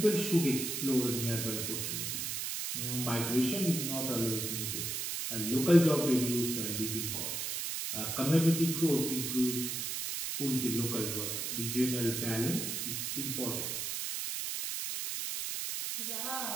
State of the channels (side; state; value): right; noise; hiss, 2 dB below the sound